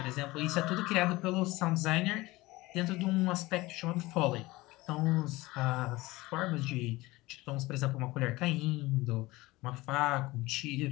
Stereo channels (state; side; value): quieter; right; 20.3 dB